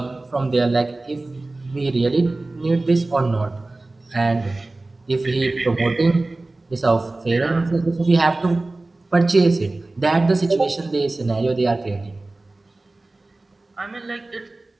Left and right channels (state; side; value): quieter; left; 3.0 dB